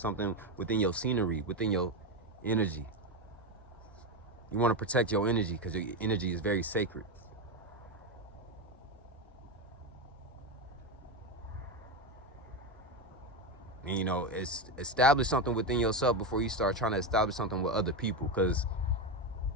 within your scenery, within your energy. You want to protect your energy, because your energy is very sacred. And, you know, establish something within yourself before you start trying to establish something with other people, because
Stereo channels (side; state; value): both; normal; correlation 0.13